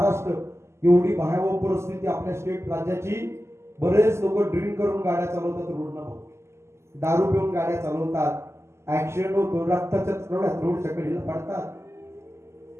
एवढी भयावह परिस्थिती आपल्या स्टेट राज्याची. बरेच लोक ड्रिंक करून गाड्या चालवतात रोडना भाऊ, दारू पिऊन गाड्या चालवतात, ऍक्सिडेंट होतो, रक्ताच्या थोड्यात रोडच्या कडेला पडतात.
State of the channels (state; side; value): late; left; 0.13 ms